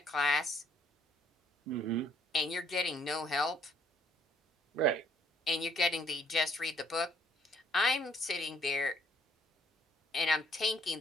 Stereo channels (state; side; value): normal; both; correlation 0.65